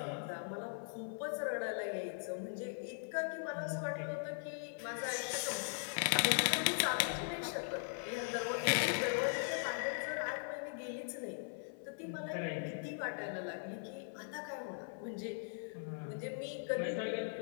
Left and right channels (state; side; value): silent; right; 51 dB below the other